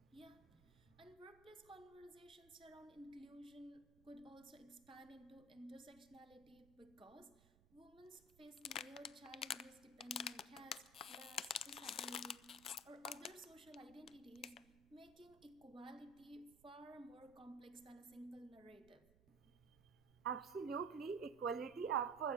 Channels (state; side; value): noise; right; rumble, 25 dB below the sound